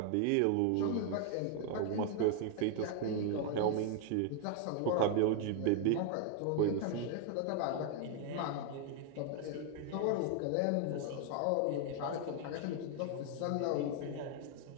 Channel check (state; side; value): different; both; correlation 0.00